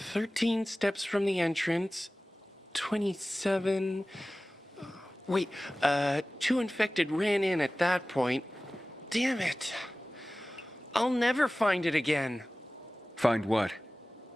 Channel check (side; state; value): both; normal; correlation 0.97